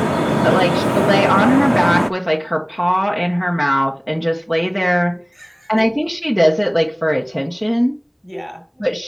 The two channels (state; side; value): identical; both; correlation 1.00